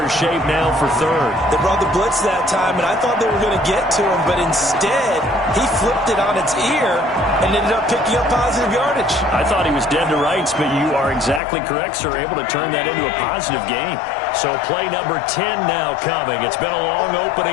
shape now for 3rd. They brought the blitz that time, and I thought they were going to get to him, but instead he flipped it on its ear and ended up picking up positive yardage. I thought he was dead to rights, but you are exactly correct, sir. Able to turn that into a positive gain. So play number 10 now coming. It's been a long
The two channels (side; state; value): right; drops out; at 11.4 s